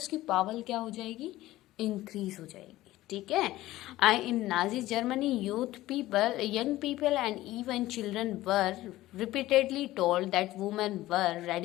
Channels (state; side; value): quieter; right; 16.3 dB